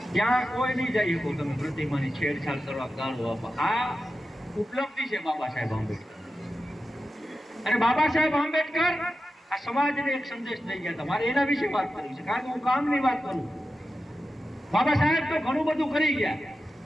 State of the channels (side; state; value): both; normal; correlation 0.92